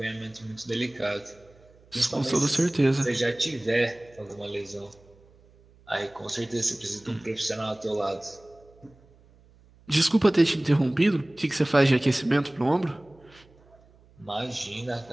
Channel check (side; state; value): right; noise; hum, 28 dB below the sound